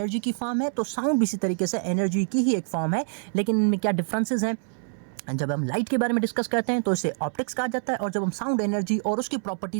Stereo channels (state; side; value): silent; left; 60 dB below the other